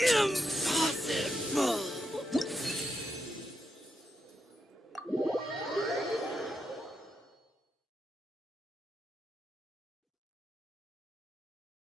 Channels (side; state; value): both; normal; correlation 0.83